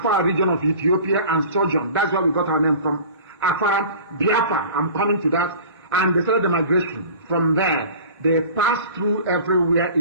region of Ethiopia and sojourned. That's where we got our name from. Afar, Biafra, I'm coming to that. And they started the migration. From there, they passed through everywhere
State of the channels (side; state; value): both; inverted; correlation -0.42